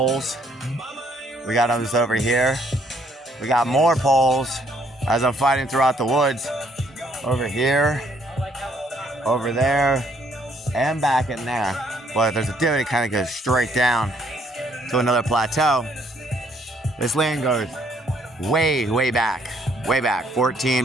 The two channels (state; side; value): normal; both; correlation 0.66